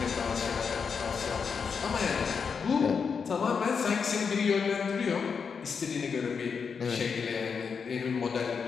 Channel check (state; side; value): quieter; right; 5.9 dB